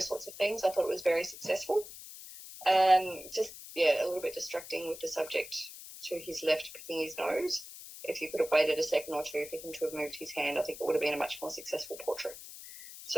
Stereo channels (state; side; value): noise; left; hiss, 14 dB below the sound